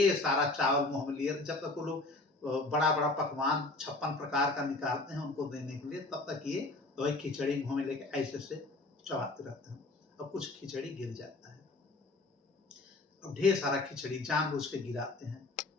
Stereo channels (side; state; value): right; quieter; 3.0 dB